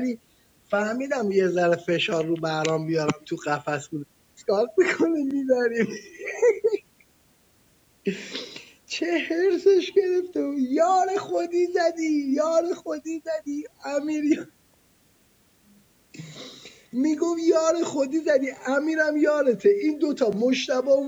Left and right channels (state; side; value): identical; both; correlation 1.00